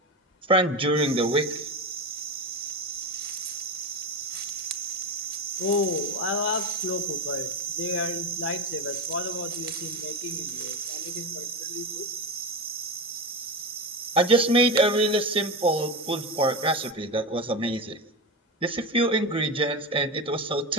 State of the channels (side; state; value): both; normal; correlation 0.19